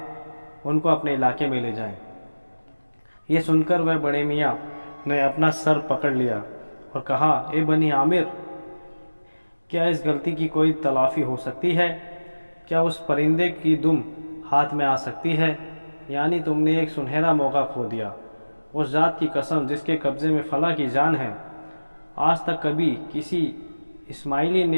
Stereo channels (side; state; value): both; inverted; correlation -1.00